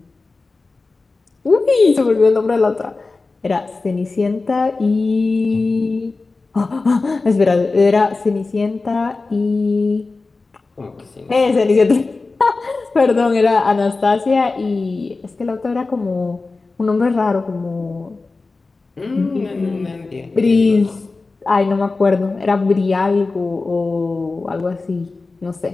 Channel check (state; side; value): quieter; right; 3.7 dB